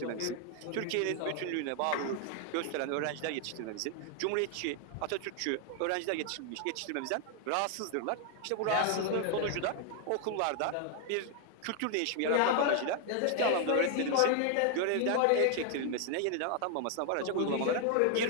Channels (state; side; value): different; both; correlation 0.00